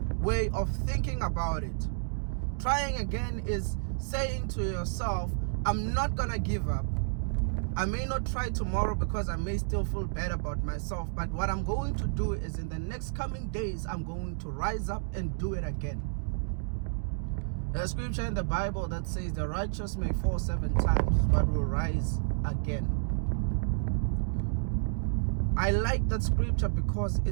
way of thinking about it. Trying again is saying to yourself, I'm not gonna give up. I may not try tomorrow because I may still feel bad about myself, but what I'm going to do is in the next coming days, I'm going to rise up and do it again. There's a scripture in the Bible that says the righteous may fall 7 times, but will rise again. I like that scripture because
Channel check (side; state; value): left; silent; digital silence